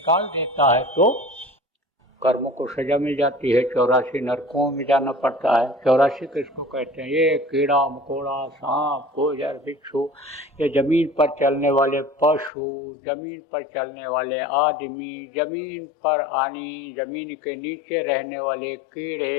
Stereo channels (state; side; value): drops out; right; at 12.5 s